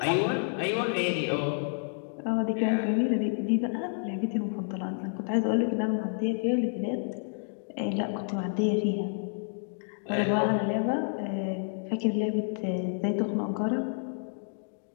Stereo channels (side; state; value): right; silent; digital silence